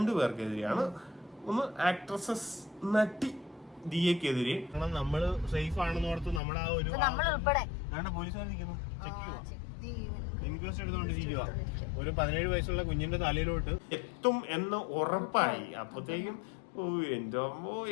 പേർക്കെതിരെയാണ്. ഒന്ന് ആക്ട്രസസ് നടി ദിയക്കെതിരെ. നമ്മള് സേഫ് ആണെന്ന് ഓർത്ത് നമ്മുടെ ആ ഒരു പോലീസുകാർ നിൽക്കുന്നു, ഇൻക്വസ്റ്റ് എടുത്തോണ്ടിരിക്കുക. ഒരു 17 വയസ്സുള്ള കുഞ്ഞിന്റെ തലയിലോട്ട് എത്തും എന്ന് ഉറപ്പായി. അപ്പത്തേക്കും എന്തോ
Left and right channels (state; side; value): drops out; right; at 6.4 s